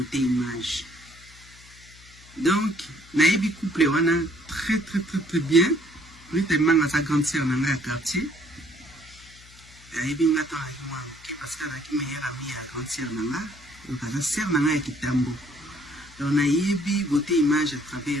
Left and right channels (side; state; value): left; noise; hum, 23 dB below the sound